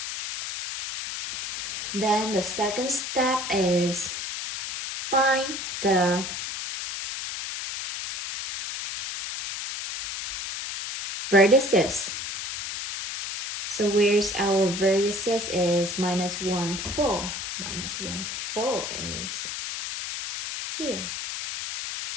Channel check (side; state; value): left; noise; hiss, 5 dB below the sound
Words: Then the second step is find the vertices. So where's our vertices is -1, 4. -1, 4 is here.